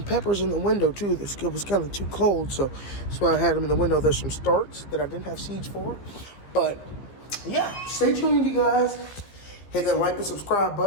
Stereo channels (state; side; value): late; right; 15 ms